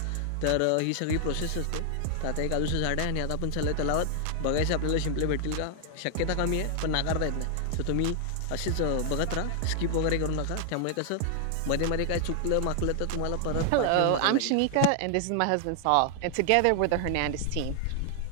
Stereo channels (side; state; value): both; different; correlation 0.00